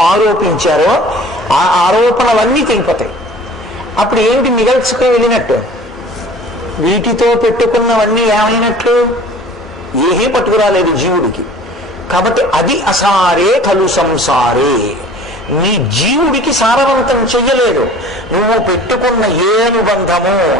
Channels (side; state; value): both; normal; correlation 0.45